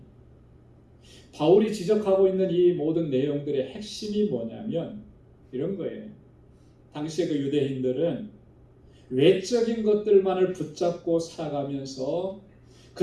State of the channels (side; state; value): both; identical; correlation 1.00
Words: 바울이 지적하고 있는 이 모든 내용들의 핵심이 뭐냐면 이런 거예요. 당시의 그 유대인들은 외적인 것들만을 붙잡고 살아가면서